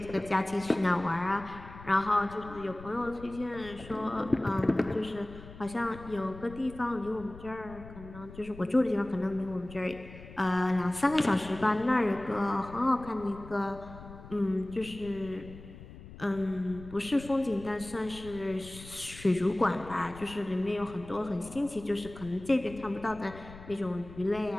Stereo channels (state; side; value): noise; left; rumble, 16 dB below the sound